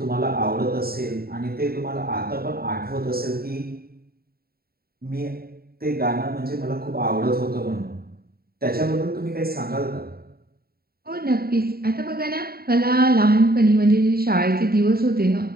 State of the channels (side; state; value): left; late; 0.44 ms